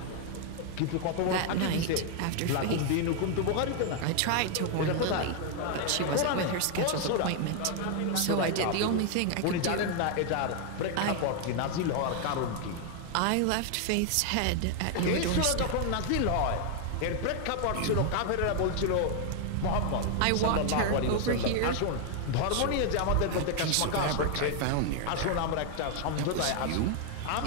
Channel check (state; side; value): different; both; correlation 0.00